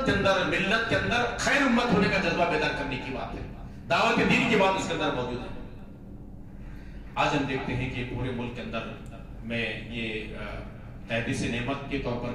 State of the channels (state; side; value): identical; both; correlation 1.00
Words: کے اندر، ملت کے اندر خیر امت ہونے کا جذبہ بیدار کرنے کی بات ہے، دعوت دین کی بات اس کے اندر موجود ہے۔ آج ہم دیکھتے ہیں کہ پورے ملک کے اندر میں یہ تحدیث نعمت کے طور